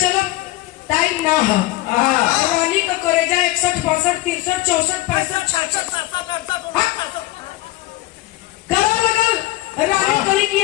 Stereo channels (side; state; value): right; quieter; 17.1 dB